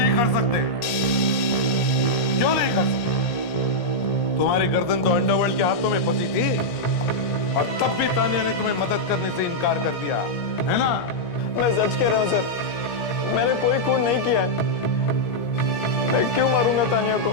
कर सकते? क्यों नहीं कर सकते? तुम्हारी गर्दन तो अंडरवर्ल्ड के हाथों में फंसी थी और तब भी तानिया ने तुम्हें मदद करने से इनकार कर दिया, है ना? मैं सच कह रहा हूँ सर, मैंने कोई खून नहीं किया है। मैं क्यों मारूंगा तानिया को?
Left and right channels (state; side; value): late; right; 17 ms